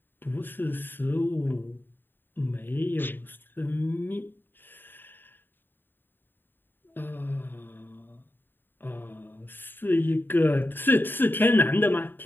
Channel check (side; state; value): right; late; 0.095 ms